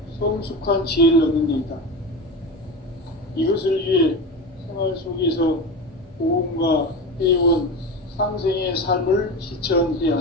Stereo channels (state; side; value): normal; both; correlation 0.25